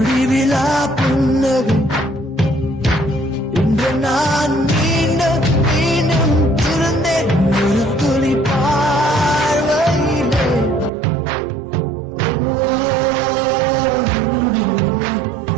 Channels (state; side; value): drops out; left; at 10.9 s